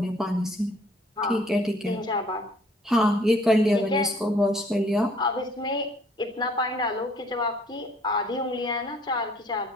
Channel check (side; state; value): both; normal; correlation 0.59